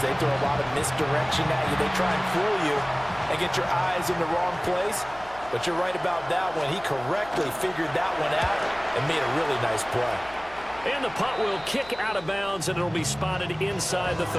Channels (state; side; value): noise; left; hum, 22 dB below the sound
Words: they throw a lot of misdirection at you. They try and fool you and get your eyes in the wrong place. But you're right about that one. He correctly figured that one out and made a really nice play. And the punt will kick out of bounds, and it'll be spotted inside the